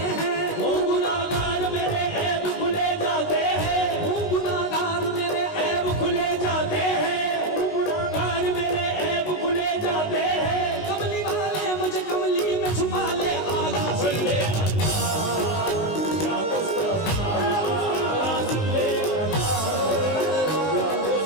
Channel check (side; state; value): right; late; 19 ms